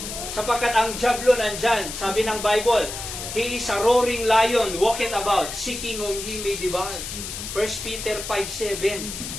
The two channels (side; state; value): left; noise; hiss, 7 dB below the sound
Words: Sapagkat ang diablo nandyan, sabi ng Bible, he is a roaring lion, walking about, seeking whom he may devour. 1 Peter 5:7.